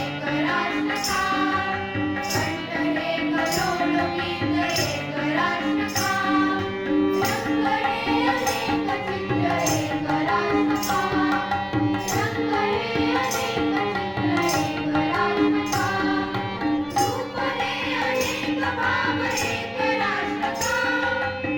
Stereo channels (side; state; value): both; identical; correlation 1.00